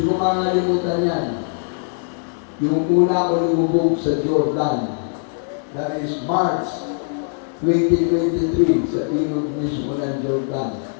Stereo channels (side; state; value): right; silent; digital silence